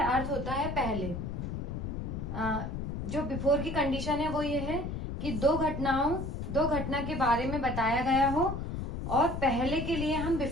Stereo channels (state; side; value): noise; left; rumble, 4 dB below the sound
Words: होता है पहले। जो बिफोर की कंडीशन है वो ये है कि दो घटना के बारे में बताया गया हो, और पहले के लिए हम